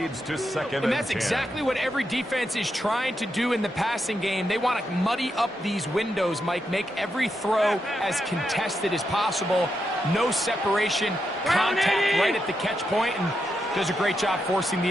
to 2nd and that's 10. exactly what every defense is trying to do in the passing game. They want to muddy up these windows, Mike, make every throw as contested as possible. No separation, contact right at the catch point, and does a great job forcing the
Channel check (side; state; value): both; normal; correlation 0.84